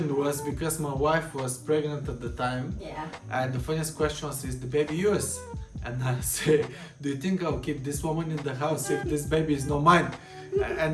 was, because my wife was pregnant at the time. Yeah. And the funniest question was, is the baby yours? And I say, do you think I'll keep this woman in the house if this baby is not mine?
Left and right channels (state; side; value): identical; both; correlation 1.00